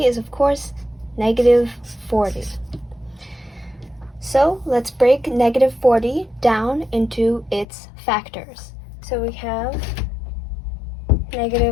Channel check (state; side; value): drops out; right; at 7.7 s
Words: is, of course, negative 40. So let's break negative 40 down into its factors. So we have